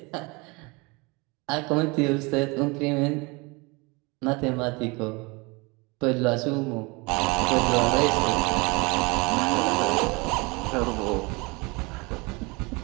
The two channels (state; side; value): quieter; left; 27.0 dB